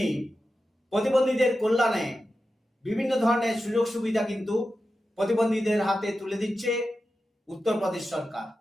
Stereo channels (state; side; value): normal; both; correlation 0.92